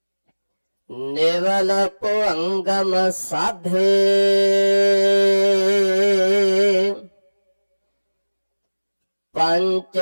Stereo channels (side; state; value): both; inverted; correlation -1.00